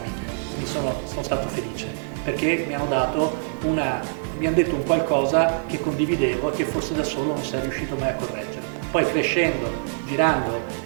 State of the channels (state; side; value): silent; left; digital silence